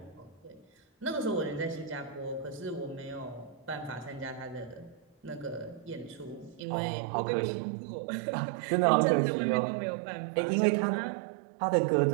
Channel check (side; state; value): left; drops out; at 6.7 s